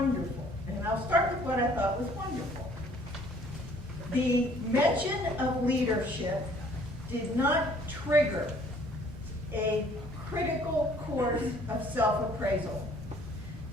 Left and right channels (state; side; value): normal; both; correlation 0.57